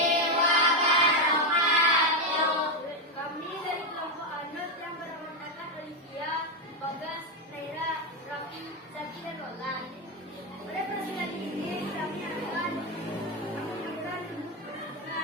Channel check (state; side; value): normal; both; correlation 0.07